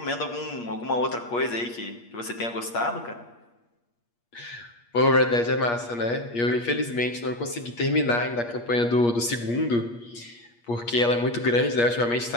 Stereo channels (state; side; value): late; right; 8.5 ms